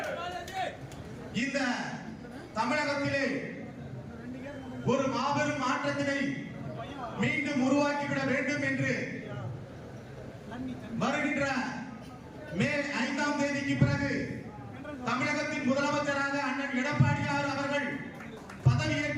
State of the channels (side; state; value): both; identical; correlation 1.00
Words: இந்த தமிழகத்திலே ஒரு மாபெரும் மாற்றத்தினை மீண்டும் உருவாக்கிவிட வேண்டும் என்று வருகின்ற மே 5ஆம் தேதிக்கு பிறகு தமிழகத்தின் முதலமைச்சராக அண்ணன் எடப்பாடியார் அவர்கள்